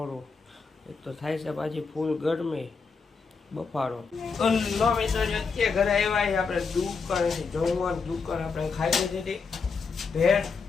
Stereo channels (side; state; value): right; quieter; 4.9 dB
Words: એક તો થાય છે, પાછી ફૂલ ગરમી બફારો. લો મિત્રો, અત્યારે ઘરે આવ્યા આપણે દુકાનેથી જમવાનું. દુકાન આપણે ખાઈ લીધી ભેળ.